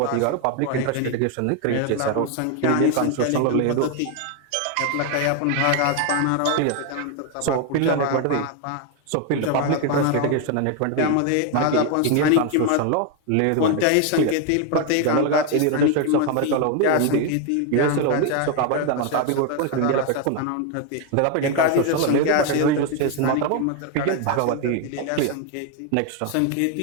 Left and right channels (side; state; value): both; different; correlation 0.01